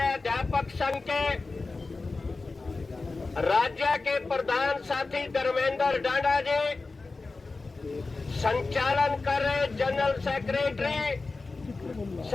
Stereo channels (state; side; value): quieter; right; 3.7 dB